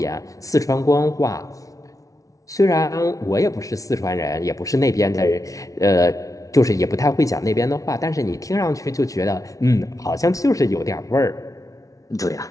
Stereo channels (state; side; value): late; right; 0.17 ms